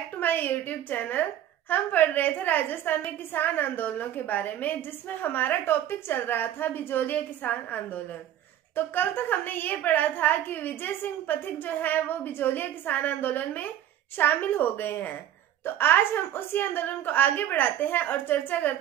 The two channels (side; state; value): left; quieter; 11.4 dB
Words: to my YouTube channel. हम पढ़ रहे थे राजस्थान में किसान आंदोलनों के बारे में, जिसमें हमारा टॉपिक चल रहा था बिजोलिया किसान आंदोलन। तो कल तक हमने ये पढ़ा था कि विजय सिंह पथिक जो है वो बिजोलिया किसान आंदोलन में शामिल हो गए हैं। तो आज हम उसी आंदोलन को आगे बढ़ाते हैं और चर्चा